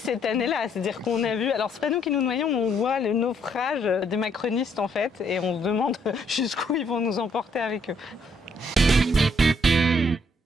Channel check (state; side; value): normal; both; correlation 0.69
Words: année-là, c'est-à-dire qu'on a vu, alors c'est pas nous qui nous noyons, on voit le naufrage des macronistes en fait, et on se demande jusqu'où ils vont nous emporter avec eux.